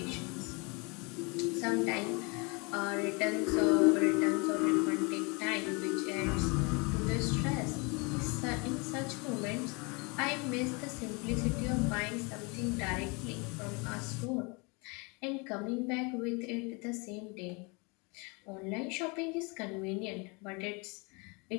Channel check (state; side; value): quieter; right; 30.1 dB